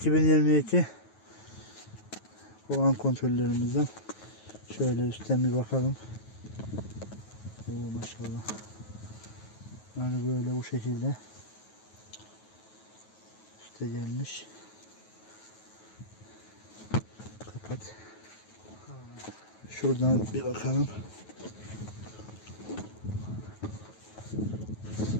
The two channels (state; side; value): late; right; 9.3 ms